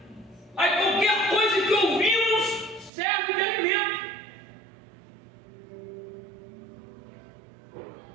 Aí qualquer coisa que ouvimos serve de alimento.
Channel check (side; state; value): left; drops out; at 2.9 s